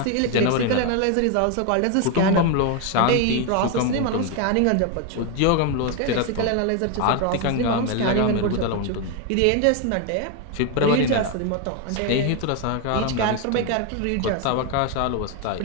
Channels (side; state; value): both; different; correlation 0.01